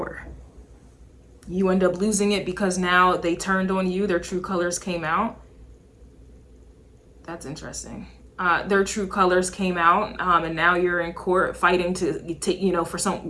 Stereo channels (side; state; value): both; identical; correlation 1.00